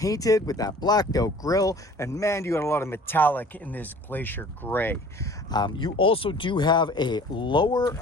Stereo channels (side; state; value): both; normal; correlation 0.47